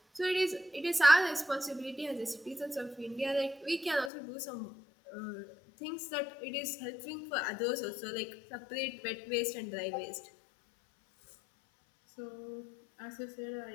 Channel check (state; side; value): drops out; right; at 4.1 s